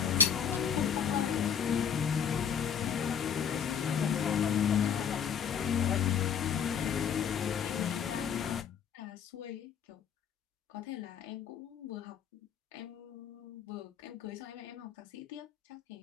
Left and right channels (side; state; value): right; quieter; 7.6 dB